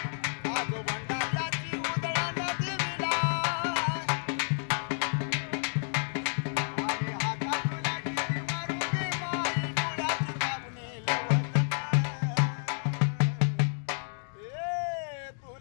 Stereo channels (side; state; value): right; silent; digital silence